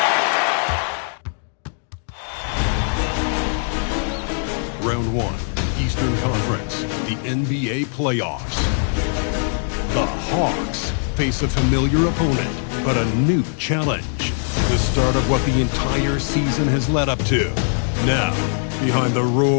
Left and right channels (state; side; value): silent; right; 65 dB below the other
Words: Round 1, Eastern Conference, the NBA playoffs. The Hawks face a familiar opponent, but a new challenge. The start of what the entire season has led up to. Now, behind the